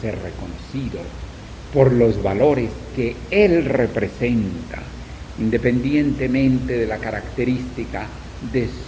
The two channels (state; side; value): identical; both; correlation 1.00